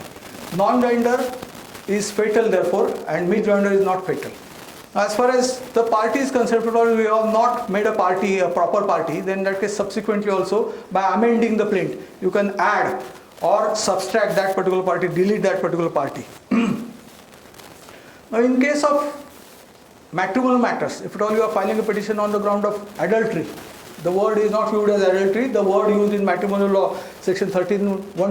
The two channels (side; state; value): both; identical; correlation 1.00